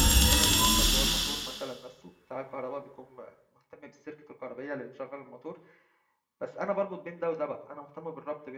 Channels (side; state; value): both; identical; correlation 1.00